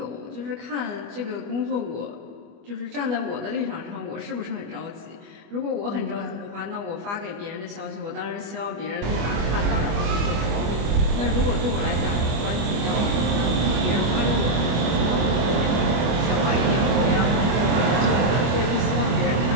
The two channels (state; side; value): late; left; 25 ms